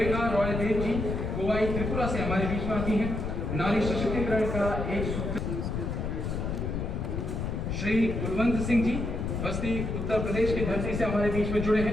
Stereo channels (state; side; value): noise; left; rumble, 2 dB below the sound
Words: रॉयदेव जी कोवाई त्रिपुरा से हमारे बीच में आती हैं। नारी सशक्तिकरण का एक सूत्र। श्री कुलवंत सिंह जी बस्ती उत्तर प्रदेश की धरती से हमारे बीच में जुड़े